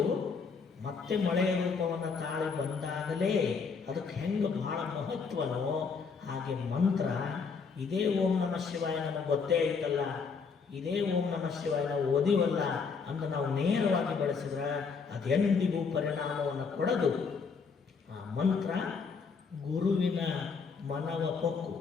ಮತ್ತೆ ಮಳೆಯ ರೂಪವನ್ನು ತಾಳಿ ಬಂದಾಗಲೇ ಅದಕ್ಕೆ ಹೆಂಗೆ ಬಹಳ ಮಹತ್ವನೋ ಹಾಗೆ ಮಂತ್ರ ಇದೇ ಓಂ ನಮಃ ಶಿವಾಯ ನಮಗೆ ಗೊತ್ತೇ ಐತಲ್ಲ, ಇದೇ ಓಂ ನಮಃ ಶಿವಾಯ ನಾವು ಓದಿವಲ್ಲ ಅಂತ ನಾವು ನೇರವಾಗಿ ಬಳಸಿದ್ರೆ ಅದೆಂದಿಗೂ ಪರಿಣಾಮವನ್ನು ಕೊಡದು. ಆ ಮಂತ್ರ ಗುರುವಿನ ಮನವ ಪೊಕ್ಕು,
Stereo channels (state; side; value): quieter; right; 5.4 dB